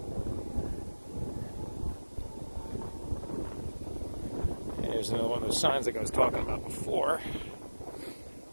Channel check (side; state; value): both; inverted; correlation -1.00